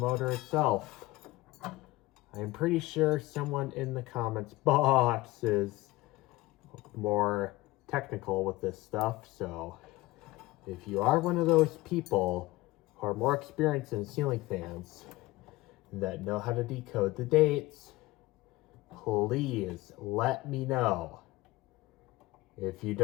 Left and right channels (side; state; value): right; quieter; 19.6 dB